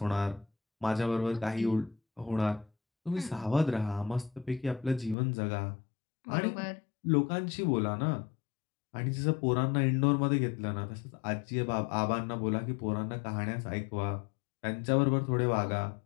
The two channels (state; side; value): drops out; right; at 5.2 s